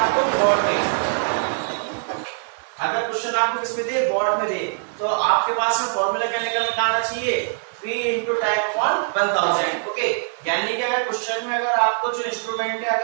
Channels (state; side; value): silent; left; digital silence